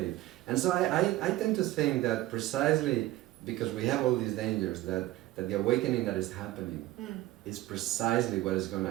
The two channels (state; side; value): quieter; left; 16.5 dB